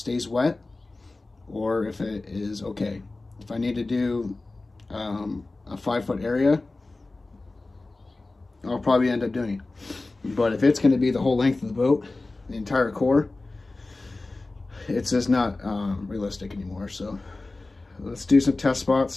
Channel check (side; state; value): right; quieter; 3.2 dB